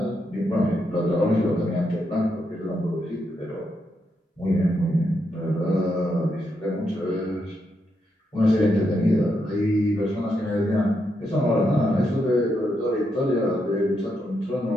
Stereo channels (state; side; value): normal; both; correlation 0.81